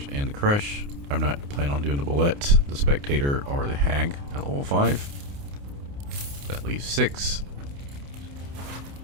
and the Crush. I'm not planning on doing the Bullet, the Spectator, or the Hag at level 5. That leaves 6.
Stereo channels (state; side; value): late; left; 29 ms